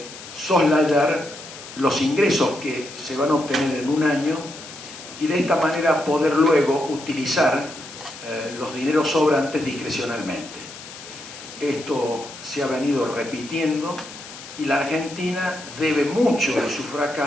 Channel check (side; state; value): left; noise; hiss, 14 dB below the sound